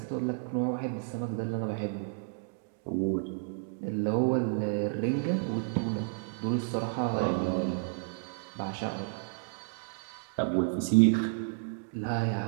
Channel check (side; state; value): left; silent; digital silence